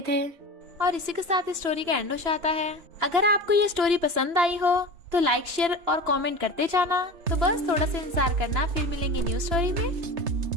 थे। और इसी के साथ इस स्टोरी का एंड हो जाता है। अगर आपको ये स्टोरी पसंद आई हो तो लाइक शेयर और कमेंट करते जाना। तो बस थोड़ा सा इंतजार करना, फिर मिलेंगे न्यू स्टोरी में।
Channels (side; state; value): left; late; 2.9 ms